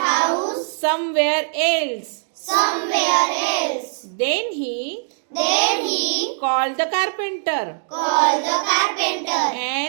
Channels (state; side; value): silent; left; digital silence